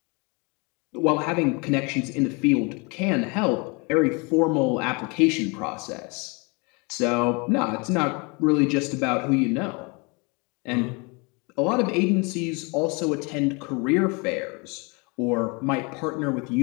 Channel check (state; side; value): quieter; right; 30.2 dB